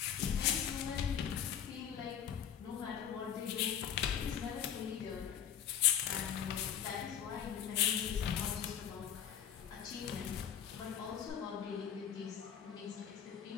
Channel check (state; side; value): quieter; right; 8.9 dB